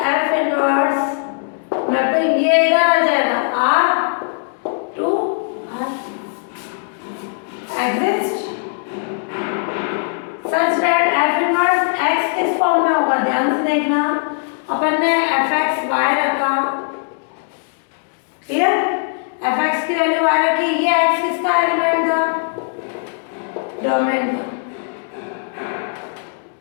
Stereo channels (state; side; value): silent; right; digital silence